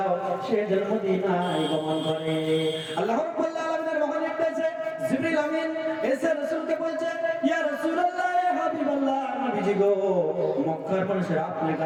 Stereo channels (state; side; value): identical; both; correlation 1.00